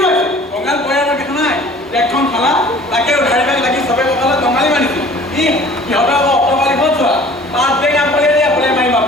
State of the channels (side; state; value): both; normal; correlation 0.48